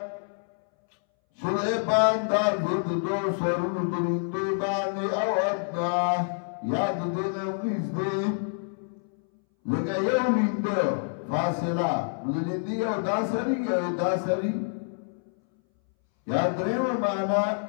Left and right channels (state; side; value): silent; right; 60 dB below the other